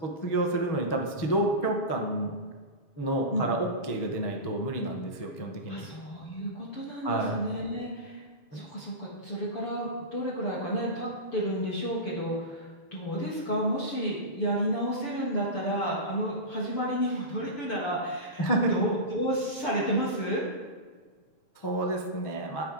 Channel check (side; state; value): right; late; 6.9 ms